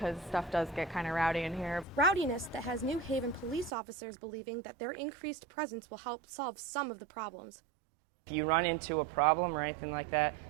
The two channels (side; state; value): left; drops out; at 3.7 s